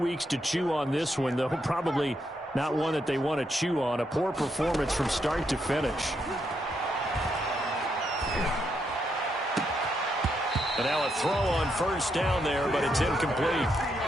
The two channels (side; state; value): both; normal; correlation 0.79